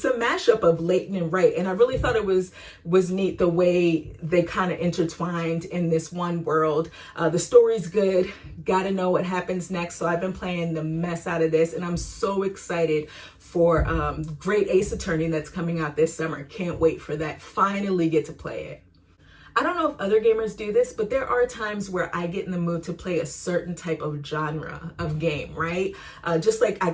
a mashup of Layton and Wright, and I really thought it was neat the way they kind of intertwined in this one world. The story's good. Got to know what happens next. So I've been playing the mess out of this, and I'm so excited for Great Ace Attorney that's coming out this summer. Can't wait for that. Finally get to play it. I don't know if other gamers do this, but there are times where I get in the mood to play a certain type of genre of game, right? Just like I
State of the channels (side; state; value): both; identical; correlation 1.00